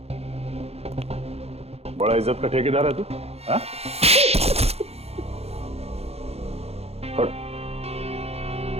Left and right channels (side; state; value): left; late; 0.30 ms